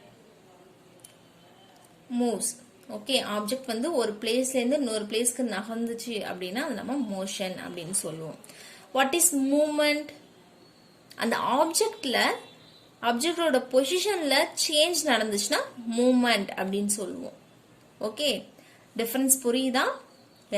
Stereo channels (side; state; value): both; identical; correlation 1.00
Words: moves. Okay, object வந்து ஒரு பிளேஸ்ல இருந்து இன்னொரு பிளேஸ்க்கு நகர்ந்துச்சு அப்படின்னா அது நம்ம மோஷன் அப்படின்னு சொல்லுவோம். What is movement? அந்த ஆப்ஜெக்டோட பொசிஷன்ல சேஞ்ச் நடந்துச்சுன்னா மூவ்மெண்ட் அப்படின்னு சொல்லுவோம். ஓகே, டிஃபரன்ஸ் புரியுதா?